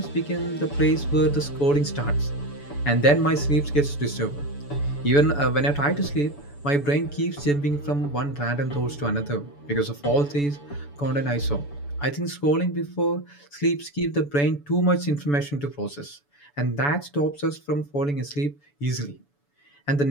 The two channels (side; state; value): right; late; 7.0 ms